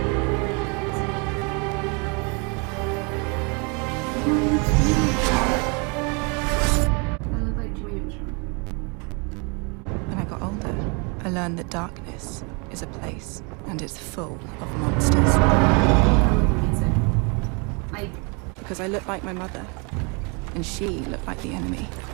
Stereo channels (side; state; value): left; quieter; 32.9 dB